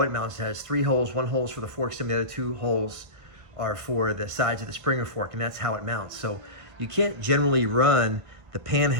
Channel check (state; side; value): late; left; 1.2 ms